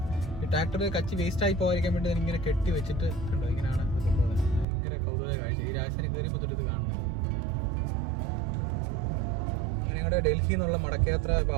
ഈ ട്രാക്ടർ കച്ച് വേസ്റ്റ് ആയി പോകാതിരിക്കാൻ വേണ്ടി ഇങ്ങനെ കെട്ടി വെച്ചിട്ട് കണ്ടോ, ഇങ്ങനെയാണ് ഇത് കൊണ്ടുപോകുന്നത്. ഭയങ്കര കൗതുക കാഴ്ച. ഈ രാജസ്ഥാനിൽ കയറിയപ്പോൾ തൊട്ട് ഇത് കാണുന്നത്. ഞങ്ങളുടെ ഡൽഹിയിൽ നിന്നുള്ള മടക്കയാത്ര ഇപ്പോൾ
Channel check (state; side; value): drops out; left; at 4.7 s